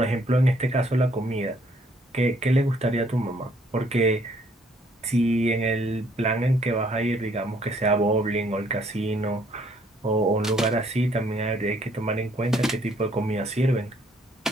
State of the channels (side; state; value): both; normal; correlation 0.65